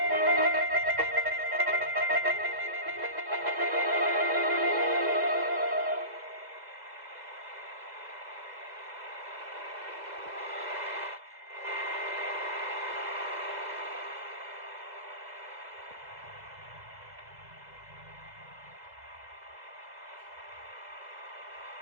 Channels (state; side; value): late; left; 2.0 ms